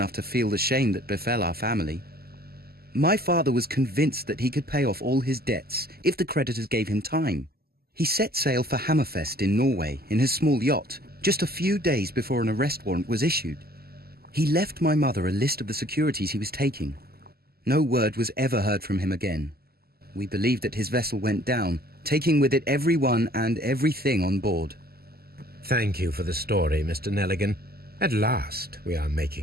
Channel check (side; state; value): left; late; 0.45 ms